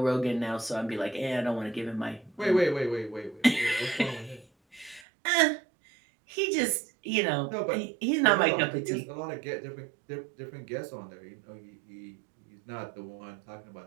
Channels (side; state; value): left; drops out; at 5.1 s